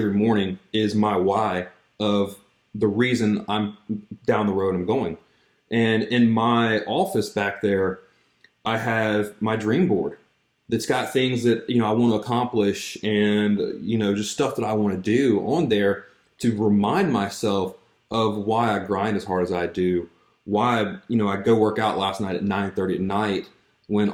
morning is my why of the reason I'm down the road I'm going. And in my office back there, I have my dream board that's got things that, I want to accomplish and, just stuff that I want to do on there to remind myself of why I grind as hard as I do, why, I go work out last night at 9:30 at night when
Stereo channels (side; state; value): both; identical; correlation 1.00